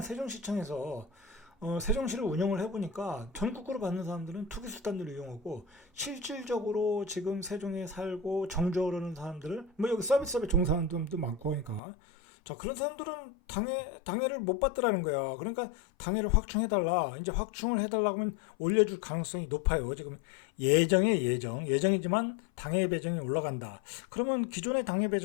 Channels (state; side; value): drops out; right; at 11.8 s